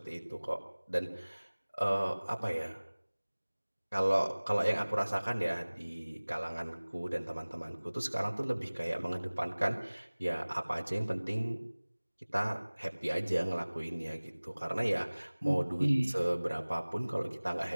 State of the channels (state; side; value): inverted; both; correlation -1.00